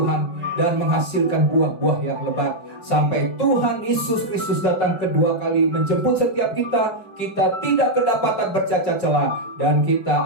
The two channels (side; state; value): right; late; 5.4 ms